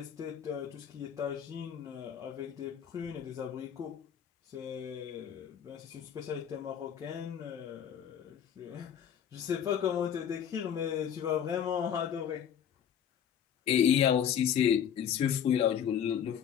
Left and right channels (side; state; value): right; quieter; 8.9 dB